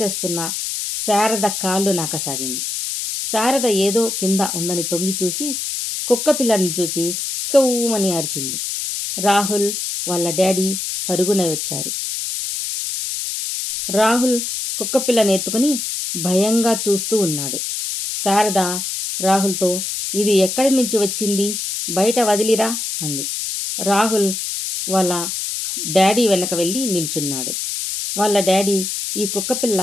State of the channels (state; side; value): noise; left; hiss, 3 dB below the sound